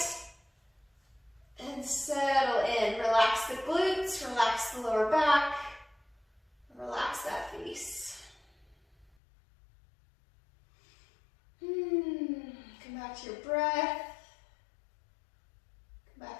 and settle in. Relax the glutes, relax the lower back, relax that face. Come back to your breath. Come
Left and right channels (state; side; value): drops out; right; at 9.1 s